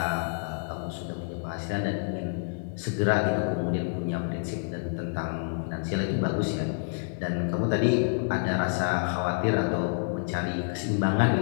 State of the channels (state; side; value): silent; right; digital silence